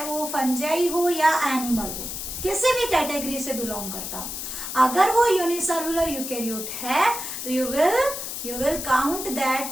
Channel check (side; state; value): left; noise; hiss, 6 dB below the sound